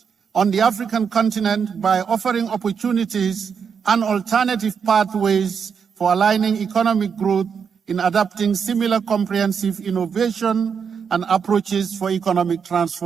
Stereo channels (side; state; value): left; quieter; 6.6 dB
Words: on the African continent by offering opportunities and alternative pathways for aligning economic growth in adapting similar comprehensive innovation and approaches for economic